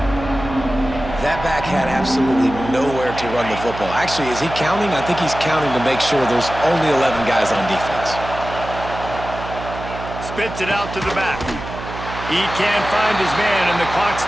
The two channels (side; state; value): right; noise; hum, 10 dB below the sound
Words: That back had absolutely nowhere to run the football. Actually, is he counting? I think he's counting to make sure there's only 11 guys on defense. Spits it out to the back. He can't find his man, and the clock